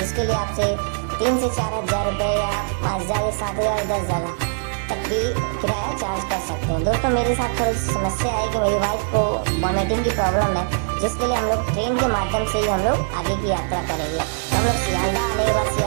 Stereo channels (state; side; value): silent; left; digital silence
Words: लिए आपसे 3 से 4 हज़ार रुपये या 5 हज़ार या 7 हज़ार 10 हज़ार तक भी किराया चार्ज कर सकते हैं। दोस्तों मेरे साथ थोड़ी सी समस्या है कि मेरी वाइफ को वॉमिटिंग की प्रॉब्लम है, जिसके लिए हम लोग ट्रेन के माध्यम से ही हम लोग आगे की यात्रा करेंगे। तो हम लोग सियालदा आने के बाद